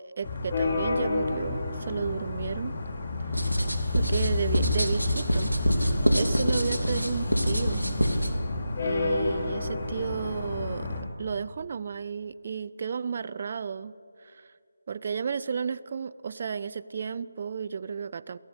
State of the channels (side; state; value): both; inverted; correlation -0.85